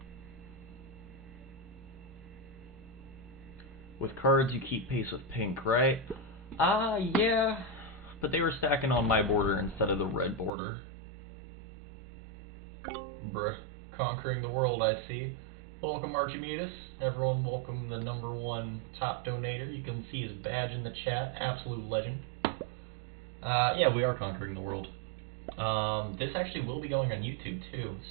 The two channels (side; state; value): left; drops out; at 10.5 s